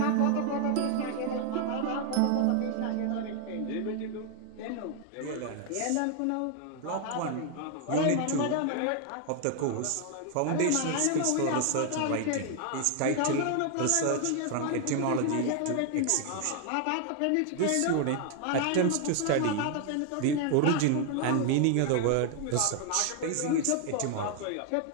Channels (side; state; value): both; different; correlation 0.00